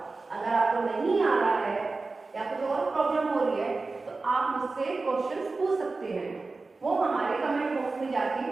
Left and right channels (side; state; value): left; quieter; 3.7 dB